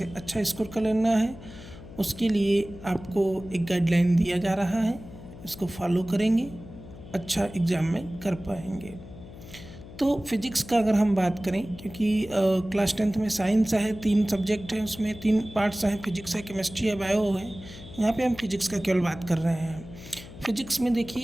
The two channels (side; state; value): left; noise; hum, 16 dB below the sound